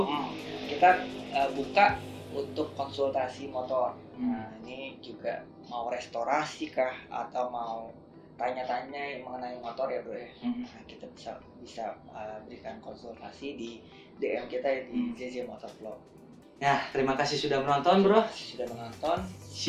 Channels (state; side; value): identical; both; correlation 1.00